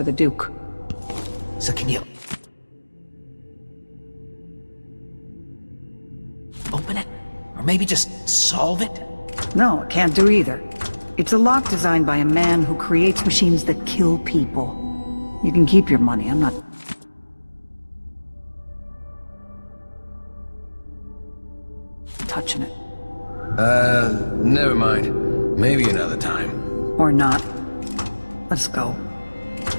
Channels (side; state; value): both; inverted; correlation -1.00